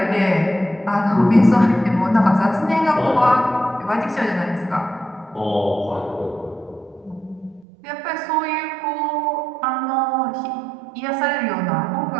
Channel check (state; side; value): drops out; left; at 7.7 s